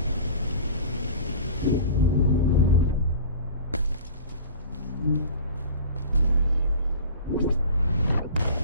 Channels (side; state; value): both; inverted; correlation -0.39